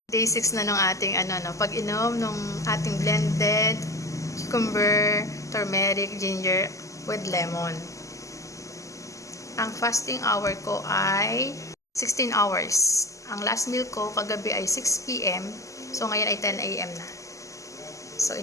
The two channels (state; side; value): late; right; 0.16 ms